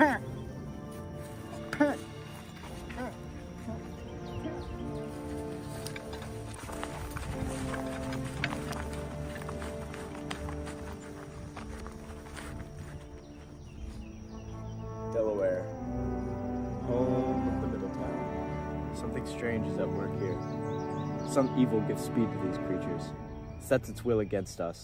Delaware, home of the Middle Town. Something strange is at work here. Some evil gives speed to these creatures, sets its will against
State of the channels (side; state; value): both; identical; correlation 1.00